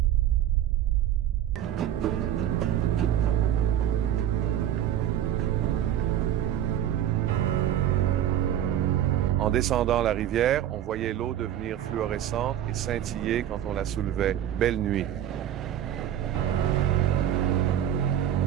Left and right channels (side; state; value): left; quieter; 11.1 dB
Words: En descendant la rivière, on voyait l'eau devenir fluorescente et scintiller quand on la soulevait. Belle nuit.